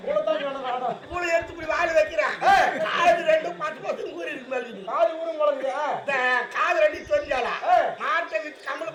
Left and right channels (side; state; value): both; identical; correlation 1.00